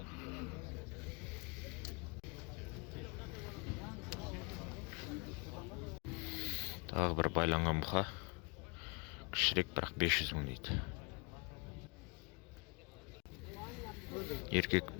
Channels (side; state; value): right; quieter; 32.4 dB